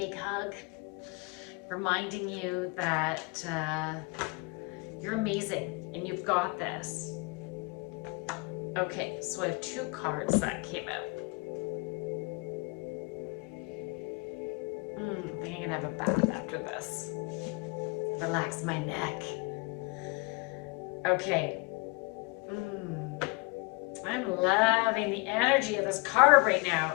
hug, reminding you that you're amazing and you've got this. Okay, so I have 2 cards that came out. I think I'm gonna have a bath after this. Relax my neck. Okay. I'm loving the energy of this card right now.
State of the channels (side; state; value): right; quieter; 29.4 dB